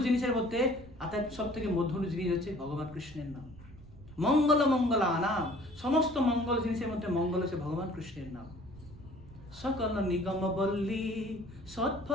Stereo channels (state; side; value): noise; right; rumble, 20 dB below the sound